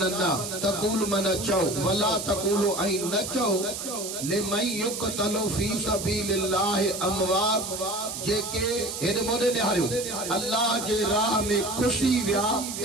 न तक़ूल मन चओ वला तक़ूलू ऐं न चओ लिमन युक़तलु फी सबीलिल्लाहि अमवात जेके हेॾे मोॾे निहारियो अल्लाह जे राह में खुशी विया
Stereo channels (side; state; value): right; noise; hiss, 6 dB below the sound